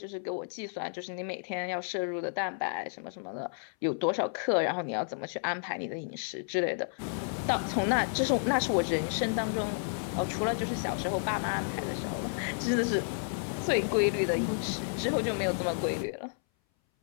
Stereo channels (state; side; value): silent; right; 57 dB below the other